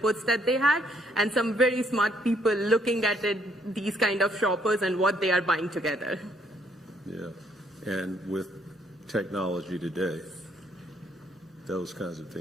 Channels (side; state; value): both; normal; correlation 0.68